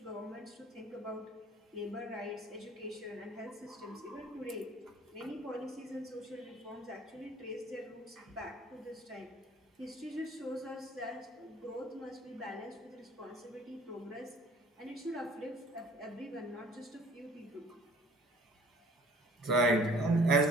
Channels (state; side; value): normal; both; correlation 0.53